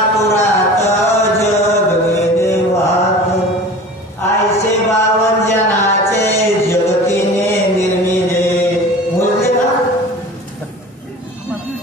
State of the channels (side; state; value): both; normal; correlation 0.39